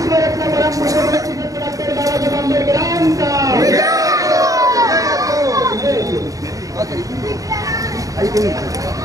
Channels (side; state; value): left; late; 0.17 ms